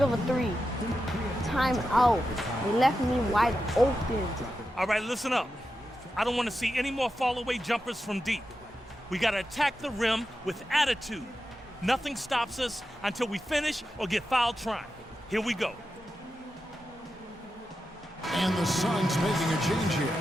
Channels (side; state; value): both; normal; correlation 0.90